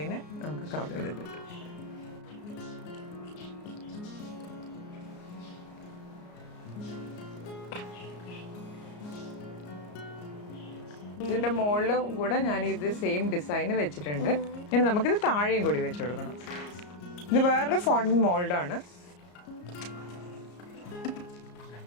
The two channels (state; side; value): late; right; 34 ms